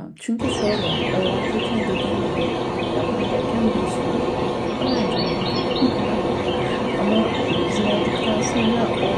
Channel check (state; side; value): identical; both; correlation 1.00